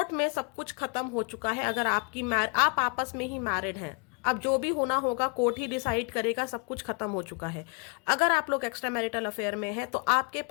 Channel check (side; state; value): right; quieter; 34.9 dB